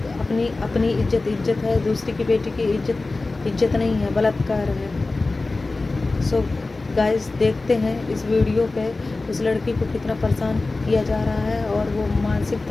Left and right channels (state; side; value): quieter; right; 3.4 dB